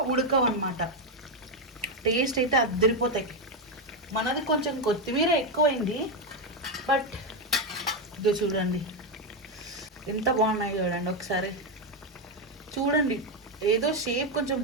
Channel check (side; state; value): both; normal; correlation 0.06